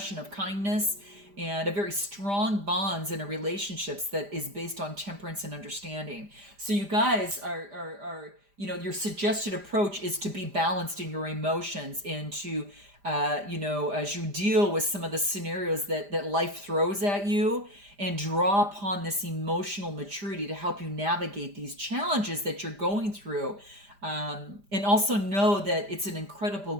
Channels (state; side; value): late; left; 5.0 ms